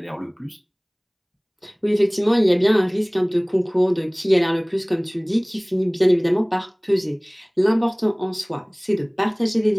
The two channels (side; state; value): both; identical; correlation 1.00